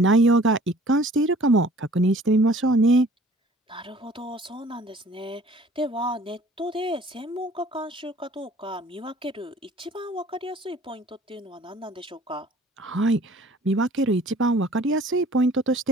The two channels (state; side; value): normal; both; correlation 0.52